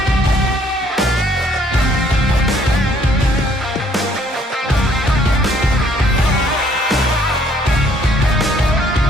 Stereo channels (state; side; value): normal; both; correlation 0.63